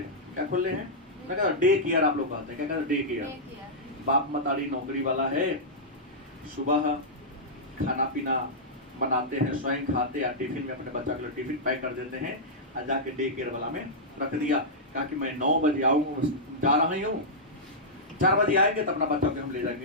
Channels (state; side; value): normal; both; correlation -0.10